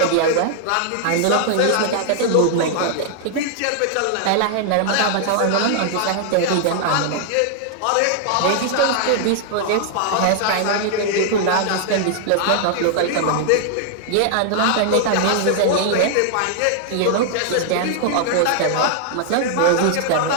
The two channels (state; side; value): different; both; correlation -0.01